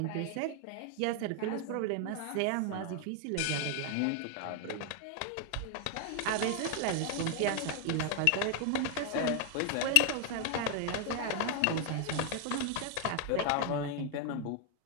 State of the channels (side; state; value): both; different; correlation 0.00